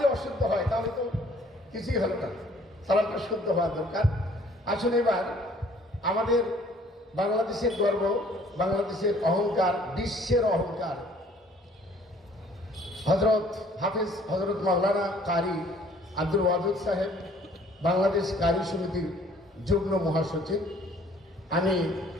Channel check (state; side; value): normal; both; correlation 0.57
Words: অশুদ্ধ হয় তাহলে তো কিছুই হলো না, সালামটা শুদ্ধ হওয়া দরকার। আসলে এবার আমাদের বাংলাদেশের গর্ব, বাংলাদেশের অহংকার, বিশ্বের অহংকার হজরত হাফিজ হজরত মাওলানা কারি আব্দুল ওয়াদুদ সাহেব, বাংলাদেশ কারি সমিতির যুগ্ম মহাসচিব। আমি